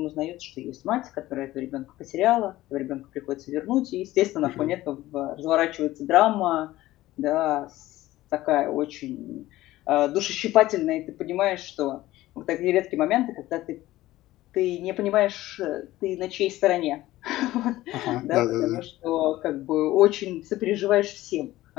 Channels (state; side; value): quieter; right; 16.3 dB